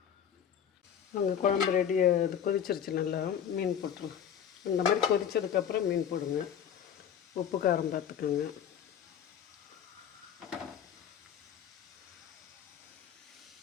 அங்கே குழம்பு ரெடி, அது கொதிச்சிருச்சு. நல்லா மீன் போட்டுருங்க. இந்த மாதிரி கொதித்ததுக்கப்புறம் மீன் போடுங்க. உப்பு காரம் பார்த்துக்கோங்க.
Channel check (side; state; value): right; quieter; 8.8 dB